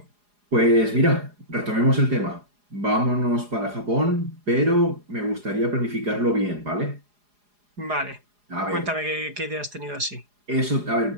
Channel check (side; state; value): left; late; 4.8 ms